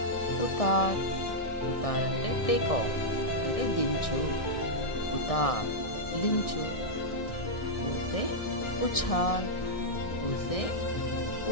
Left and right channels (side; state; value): right; late; 1.6 ms